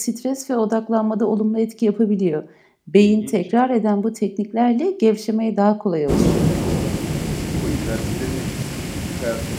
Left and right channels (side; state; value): both; identical; correlation 1.00